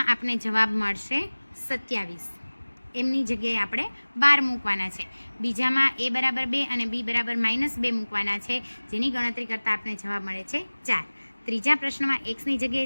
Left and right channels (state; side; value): inverted; both; correlation -1.00